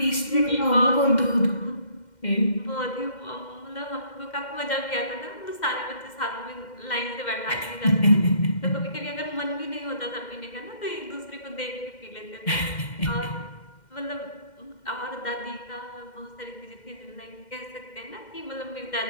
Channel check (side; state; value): right; late; 2.1 ms